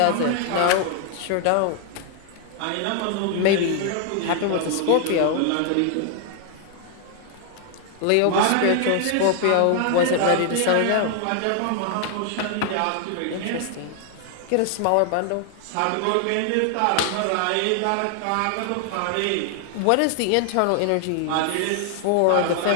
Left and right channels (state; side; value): different; both; correlation 0.00